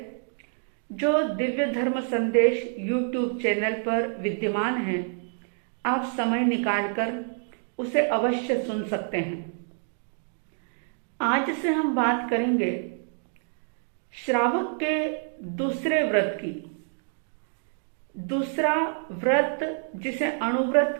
जो दिव्य धर्म संदेश यूट्यूब चैनल पर विद्यमान है। आप समय निकालकर उसे अवश्य सुन सकते हैं। आज से हम बात करेंगे श्रावक के दूसरे व्रत की। दूसरा व्रत जिसे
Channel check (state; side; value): silent; left; 60 dB below the other